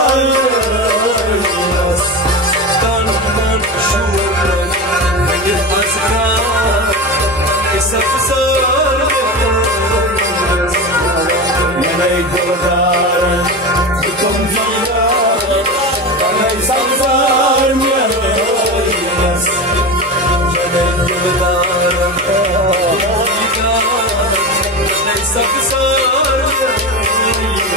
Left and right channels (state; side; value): normal; both; correlation 0.24